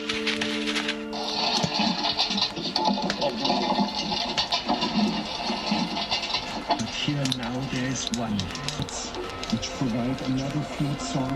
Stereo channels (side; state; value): both; identical; correlation 1.00